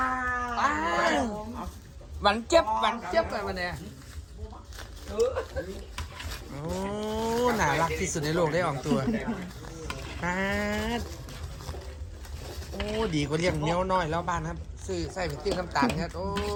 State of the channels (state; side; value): identical; both; correlation 1.00